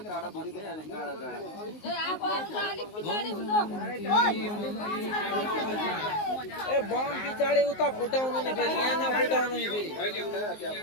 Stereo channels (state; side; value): late; right; 19 ms